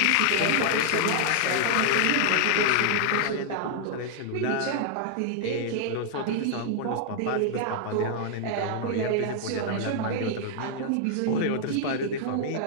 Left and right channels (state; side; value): different; both; correlation 0.00